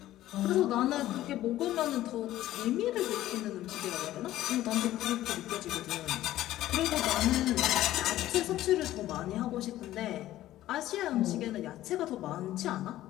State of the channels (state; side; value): quieter; right; 14.3 dB